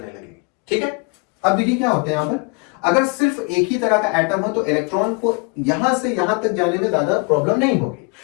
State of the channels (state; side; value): quieter; right; 32.1 dB